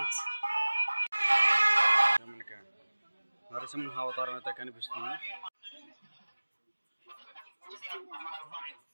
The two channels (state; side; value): inverted; both; correlation -1.00